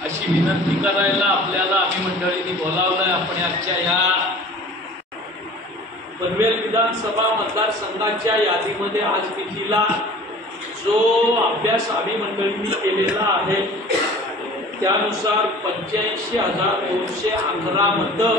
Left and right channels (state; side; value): normal; both; correlation 0.44